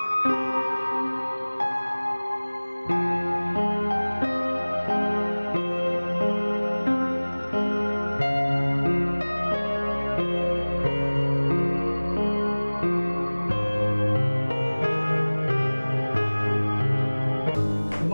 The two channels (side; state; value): both; inverted; correlation -1.00